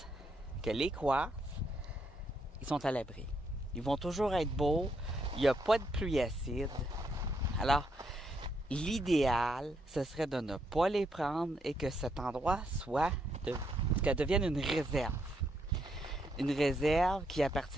les quartz, ils sont à l'abri. Ils vont toujours être beaux. Il n'y a pas de pluie acide. Alors, l'idéal, ce serait de ne pas les prendre et que cet endroit qu'elle devienne une réserve. Une réserve qui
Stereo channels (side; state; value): both; normal; correlation 0.76